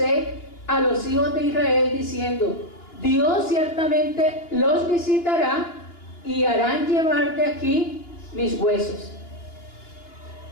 a los hijos de Israel diciendo: Dios ciertamente los visitará y harán llevar de aquí mis huesos.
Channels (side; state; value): right; late; 2.9 ms